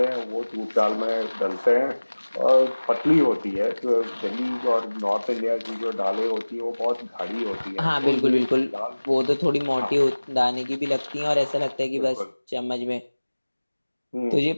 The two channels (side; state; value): both; inverted; correlation -1.00